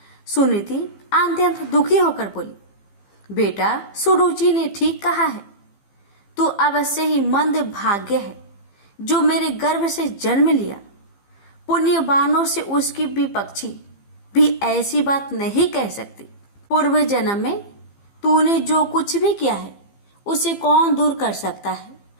सुनीति अत्यंत दुखी होकर बोली, बेटा, सुरुचि ने ठीक कहा है। तू अवश्य ही मंद भाग्य है जो मेरे गर्भ से जन्म लिया। पुण्यवानों से उसकी विपक्षी भी ऐसी बात नहीं कह सकती। पूर्व जन्म में तूने जो कुछ भी किया है उसे कौन दूर कर सकता है,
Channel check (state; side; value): late; right; 15 ms